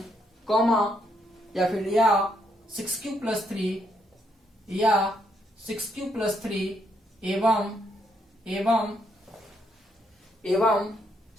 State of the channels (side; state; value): both; normal; correlation 0.75